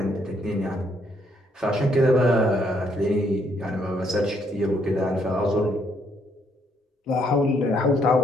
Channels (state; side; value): normal; both; correlation 0.71